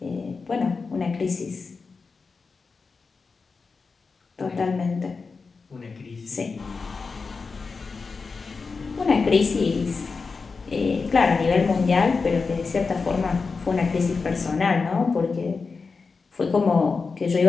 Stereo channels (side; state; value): right; quieter; 4.6 dB